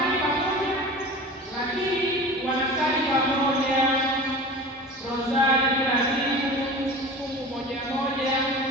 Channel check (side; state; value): both; normal; correlation 0.36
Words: pamoja, lakini wanasali pamoja rozari kila siku, fungu moja moja,